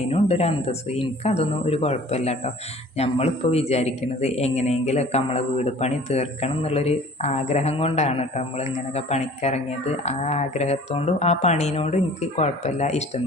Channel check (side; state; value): both; normal; correlation 0.49